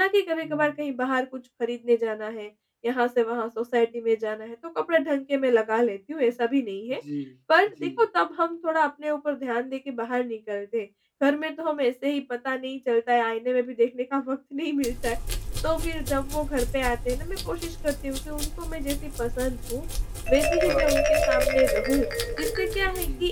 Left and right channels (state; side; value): identical; both; correlation 1.00